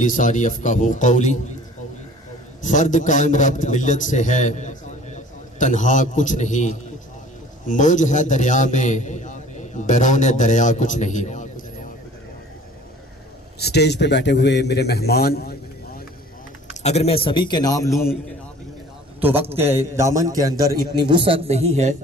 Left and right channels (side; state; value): both; normal; correlation 0.48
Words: यफ़क़हू क़ौली। फर्द कायम रब्त मिल्लत से है, तन्हा कुछ नहीं, मौज है दरिया में, बैरोन दरिया कुछ नहीं। स्टेज पे बैठे हुए मेरे मेहमान, अगर मैं सभी के नाम लूं तो वक्त के दामन के अंदर इतनी वुसअत नहीं है